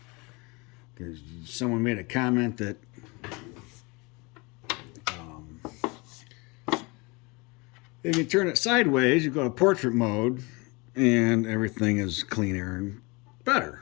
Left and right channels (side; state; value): right; quieter; 27.2 dB